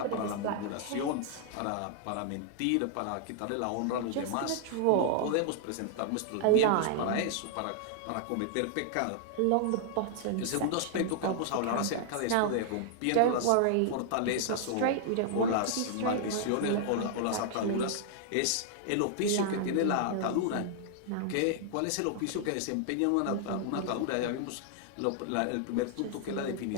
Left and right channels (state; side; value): different; both; correlation -0.01